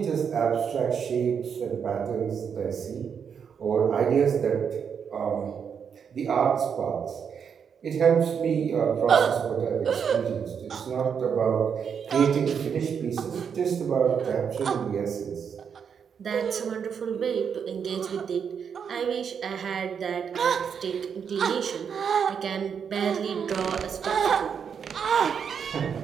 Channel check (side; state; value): left; quieter; 7.1 dB